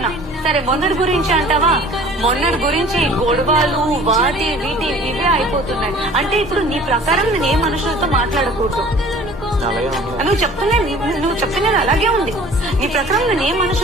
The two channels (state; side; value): normal; both; correlation 0.48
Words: సరే మొన్నటి గురించి అంటావా? మొన్నటి గురించి గొడవలు వాటి వీటి ఇవే అయిపోతున్నాయి. అంటే ఇప్పుడు నీ ప్రకారం నేను ఏ మనుషులతో మాట్లాడకూడదు. నువ్వు చెప్తున్నా అలాగే ఉంది. నీ ప్రకారం నేను ఏ